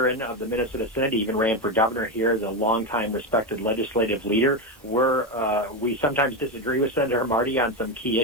of the Minnesota Senate. He even ran for governor here as a longtime respected legislative leader. We sometimes disagree with Senator Marty on some key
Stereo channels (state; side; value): normal; both; correlation 0.12